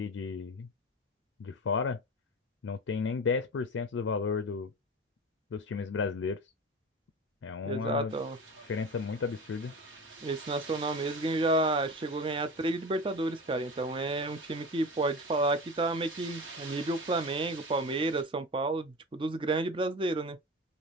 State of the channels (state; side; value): normal; both; correlation 0.30